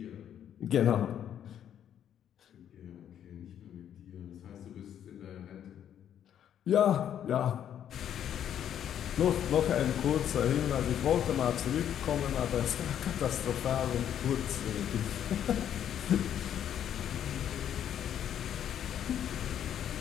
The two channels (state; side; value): quieter; right; 9.9 dB